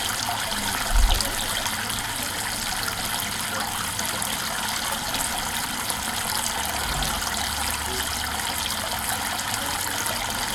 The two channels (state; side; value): identical; both; correlation 1.00